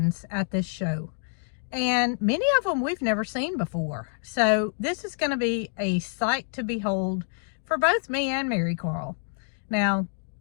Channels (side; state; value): right; silent; digital silence